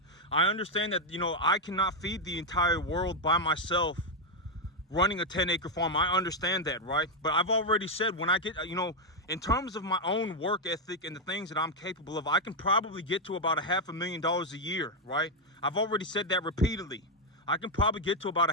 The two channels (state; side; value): normal; both; correlation 0.03